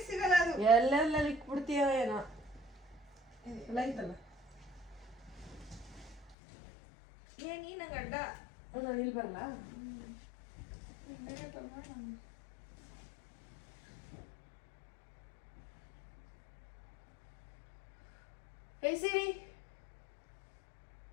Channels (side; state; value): right; drops out; at 6.4 s